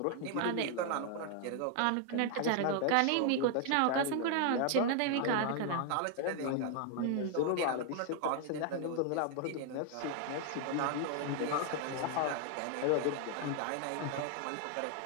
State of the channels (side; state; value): both; different; correlation 0.00